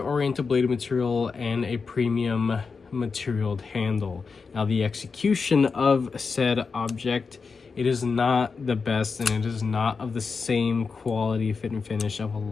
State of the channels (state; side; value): quieter; right; 4.9 dB